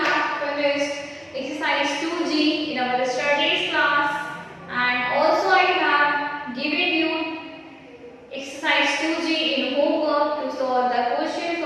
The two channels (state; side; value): identical; both; correlation 1.00